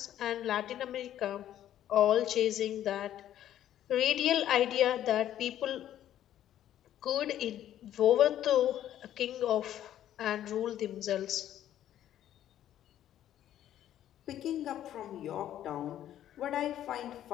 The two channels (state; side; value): quieter; right; 11.6 dB